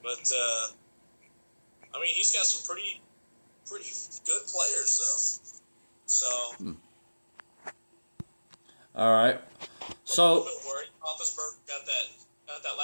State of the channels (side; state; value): both; inverted; correlation -1.00